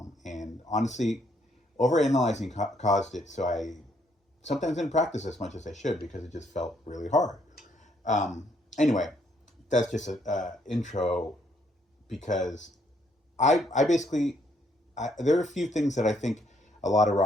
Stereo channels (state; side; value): normal; both; correlation 0.70